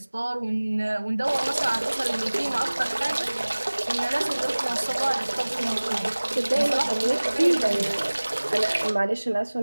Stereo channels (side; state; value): both; inverted; correlation -1.00